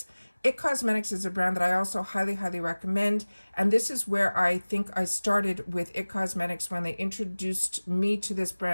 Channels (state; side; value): inverted; both; correlation -1.00